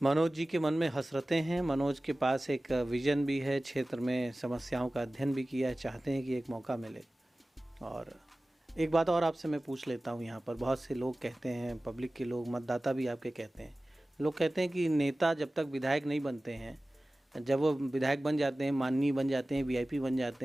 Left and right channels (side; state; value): both; normal; correlation 0.97